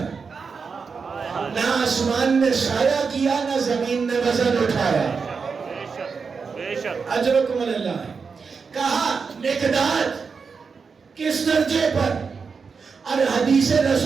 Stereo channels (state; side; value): quieter; left; 5.3 dB